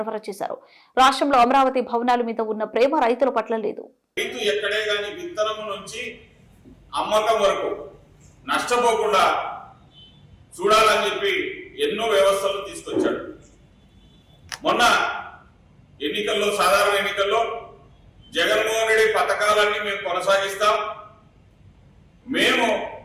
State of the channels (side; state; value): both; identical; correlation 1.00